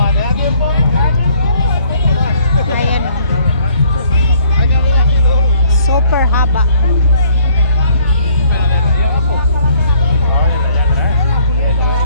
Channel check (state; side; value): inverted; both; correlation -0.60